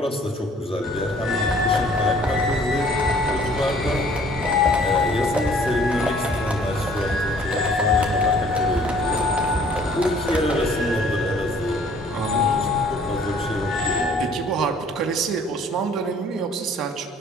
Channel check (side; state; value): both; normal; correlation 0.56